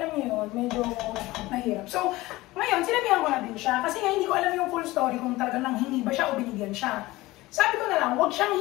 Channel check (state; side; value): quieter; right; 19.2 dB